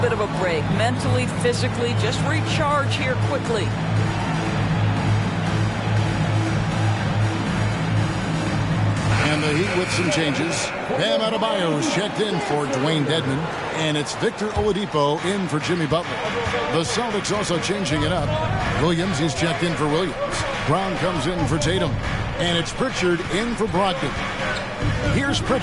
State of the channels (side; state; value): both; identical; correlation 1.00